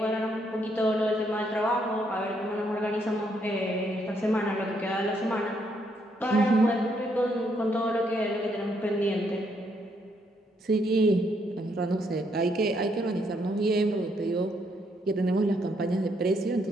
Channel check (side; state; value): both; normal; correlation 0.73